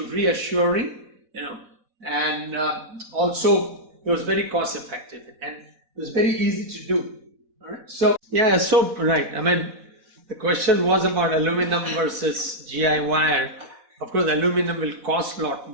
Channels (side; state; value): left; late; 4.1 ms